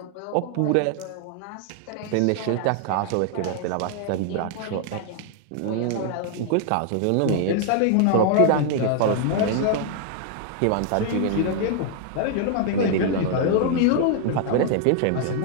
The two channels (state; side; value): different; both; correlation 0.00